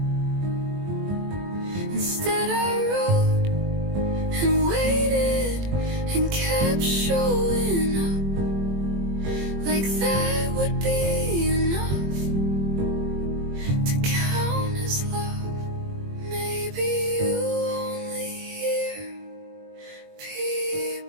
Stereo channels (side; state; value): left; late; 21 ms